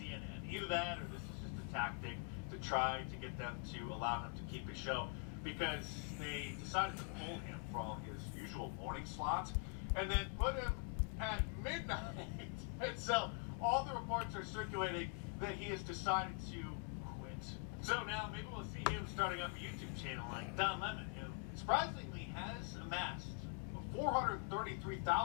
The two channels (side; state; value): right; quieter; 32.2 dB